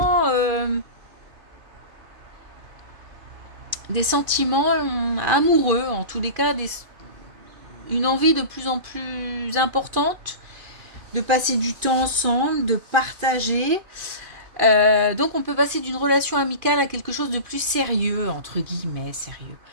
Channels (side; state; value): left; late; 2.5 ms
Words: amoureux, en tous les cas, une envie de plus en plus importante de passer du temps ensemble, de partager. Donc on peut passer d'une relation amicale à quelque chose de plus sérieux, entre guillemets, sérieux.